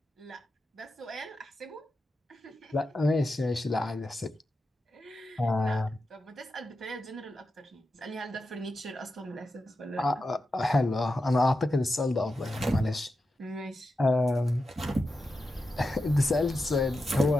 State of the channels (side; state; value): both; normal; correlation 0.90